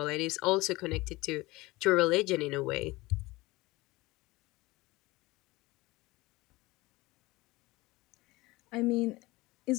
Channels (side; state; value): right; quieter; 21.1 dB